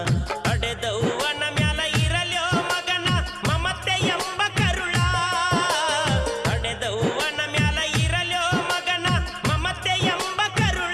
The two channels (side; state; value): both; identical; correlation 1.00